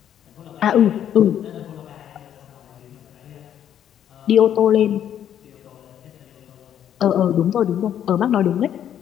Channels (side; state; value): right; quieter; 10.0 dB